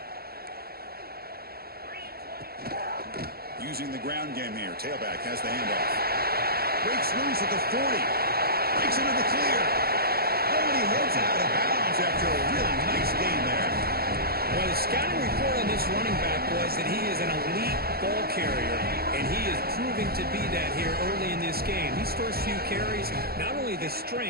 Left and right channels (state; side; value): late; left; 0.45 ms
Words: Using the ground game here. Tailback has the handoff. Breaks loose at the 40. Breaks into the clear. Oh, and he heads out of bounds after a really nice gain there. Well, the scouting report on this running back was that he is an elite ball carrier, and he is proving to be that here early in this game. These first few carries, not only the